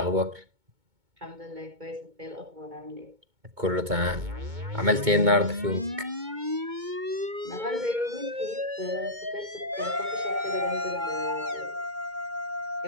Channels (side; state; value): left; late; 2.2 ms